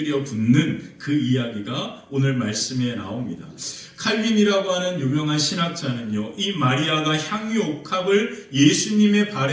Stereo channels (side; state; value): both; identical; correlation 1.00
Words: 붓는 그 이야기가 오늘 말씀에 나옵니다. 칼빈이라고 하는 유명한 신학자는요, 이 마리아가 향유옥합을 예수님의